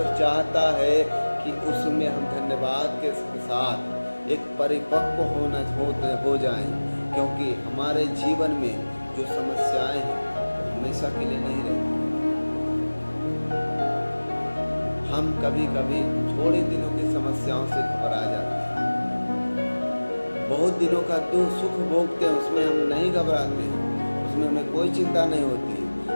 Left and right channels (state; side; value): inverted; both; correlation -1.00